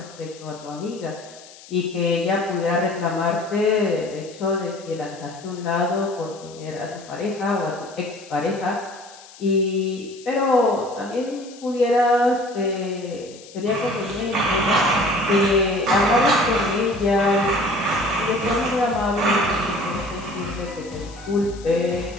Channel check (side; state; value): left; noise; hiss, 20 dB below the sound